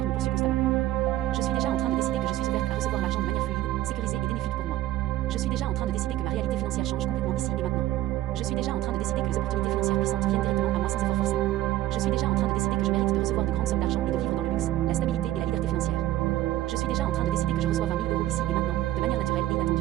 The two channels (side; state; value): left; quieter; 14.6 dB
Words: poursuit constamment. Je suis déjà en train de décider que je suis ouverte à recevoir l'argent de manière fluide, sécurisée et bénéfique pour moi. Je suis déjà en train de décider que ma réalité financière change complètement ici et maintenant. Je suis déjà en train de décider que les opportunités financières puissantes viennent directement à moi sans effort forcé. Je suis déjà en train de décider que je mérite de recevoir de grandes sommes d'argent et de vivre dans le luxe, la stabilité et la liberté financière. Je suis déjà en train de décider que je reçois 20 000 euros ici et maintenant, de manière naturelle et inattendue.